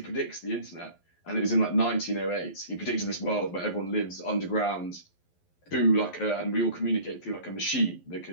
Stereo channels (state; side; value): late; right; 11 ms